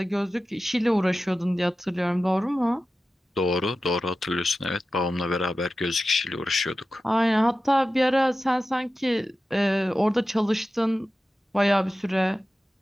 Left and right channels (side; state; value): both; normal; correlation 0.94